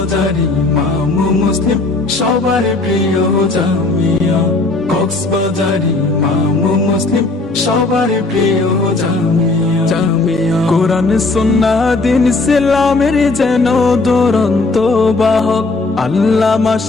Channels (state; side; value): quieter; right; 3.3 dB